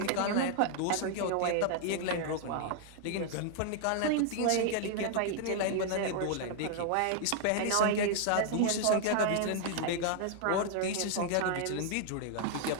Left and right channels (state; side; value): different; both; correlation 0.00